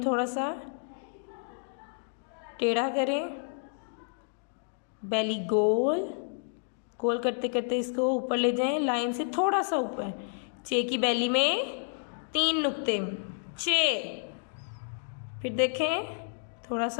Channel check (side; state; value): right; silent; digital silence